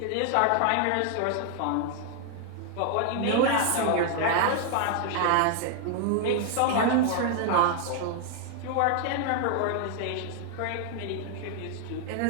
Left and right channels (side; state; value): both; different; correlation 0.00